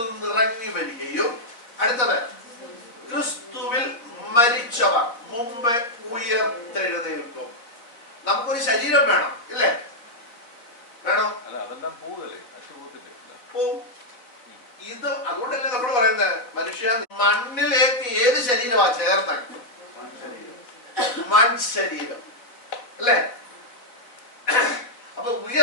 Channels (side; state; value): right; late; 4.1 ms